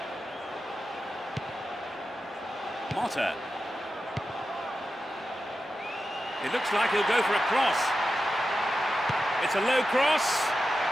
Motta. It looks like he'll go for a cross. It's a low cross.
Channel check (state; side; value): normal; both; correlation 0.91